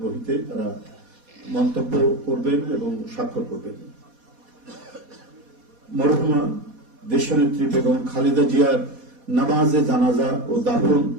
বহিতে তারা মন্তব্য করবেন এবং স্বাক্ষর করবেন। মরহুমা দেশনেত্রী বেগম খালেদা জিয়ার নামাজে জানাজা ও দাফন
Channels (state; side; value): late; left; 4.1 ms